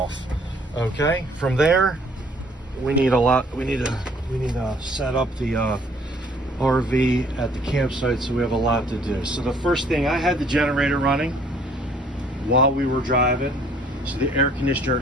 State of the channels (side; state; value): both; normal; correlation 0.59